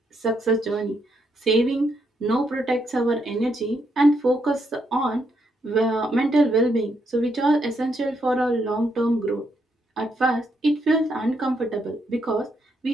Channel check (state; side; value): normal; both; correlation 0.77